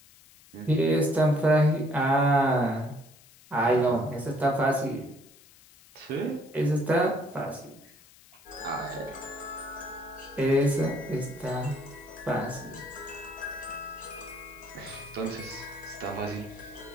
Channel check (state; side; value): noise; left; hiss, 25 dB below the sound